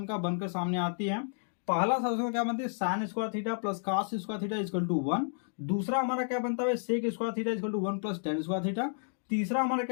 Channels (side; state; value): right; silent; digital silence